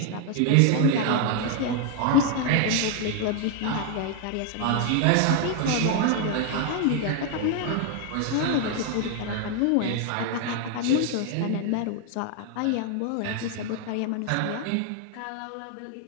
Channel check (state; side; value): different; both; correlation 0.00